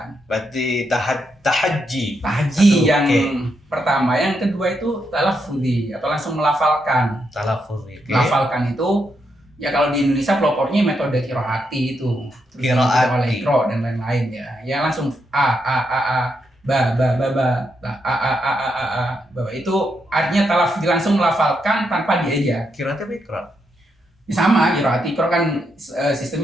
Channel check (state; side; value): normal; both; correlation 0.81